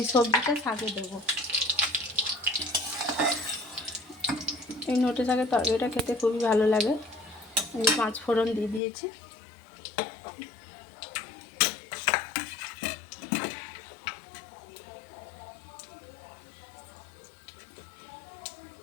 সবজিটা শাকে দেবো। এই নোটে শাকের তরকারিটা খেতে খুবই ভালো লাগে। আমি 5 ফোড়ন দিয়ে দিয়েছি।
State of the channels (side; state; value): right; drops out; at 8.8 s